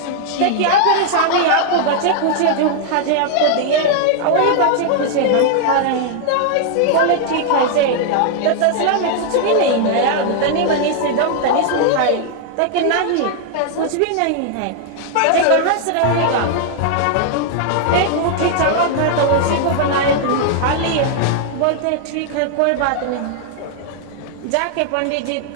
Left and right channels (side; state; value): both; different; correlation 0.00